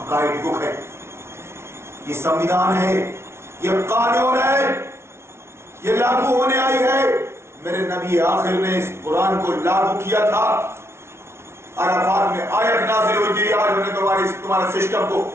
گائیڈ بک ہے, یہ سمویدھان ہے, یہ قانون ہے, یہ لاگو ہونے آئی ہے. میرے نبی آخر نے اس قرآن کو لاگو کیا تھا. عرفات میں آیت نازل ہوئی تھی, آج ہم نے تمہارے سسٹم کو,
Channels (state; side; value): late; left; 0.12 ms